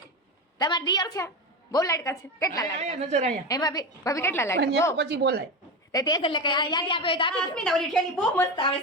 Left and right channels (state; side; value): normal; both; correlation 0.19